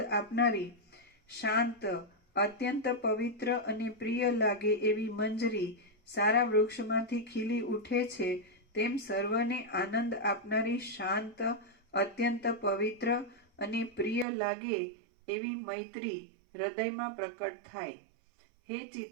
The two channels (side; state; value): left; drops out; at 14.2 s